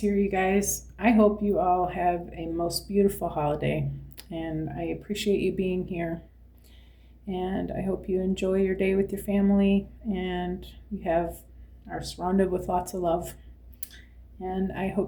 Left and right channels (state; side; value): identical; both; correlation 1.00